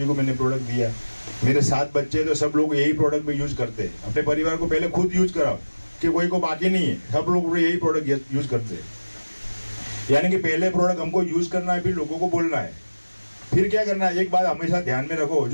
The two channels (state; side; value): inverted; both; correlation -1.00